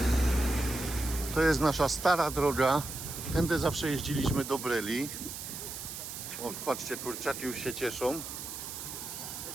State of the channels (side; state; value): right; noise; hiss, 8 dB below the sound